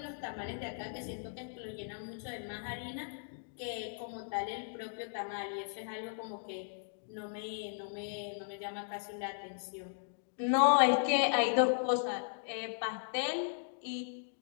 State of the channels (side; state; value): right; silent; digital silence